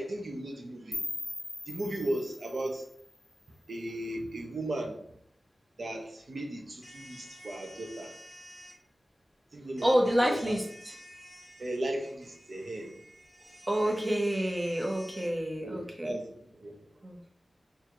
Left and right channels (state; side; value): normal; both; correlation 0.96